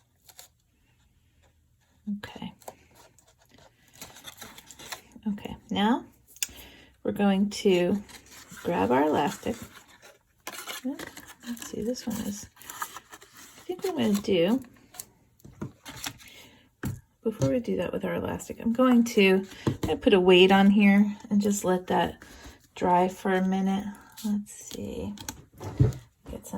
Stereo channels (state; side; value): identical; both; correlation 1.00